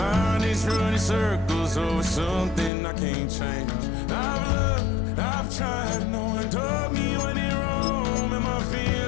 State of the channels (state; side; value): drops out; right; at 2.7 s